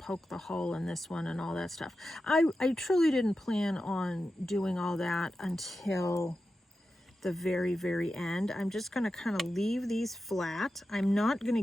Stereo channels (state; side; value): normal; both; correlation 0.91